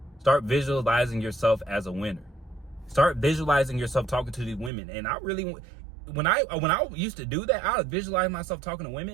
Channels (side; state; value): left; drops out; at 4.7 s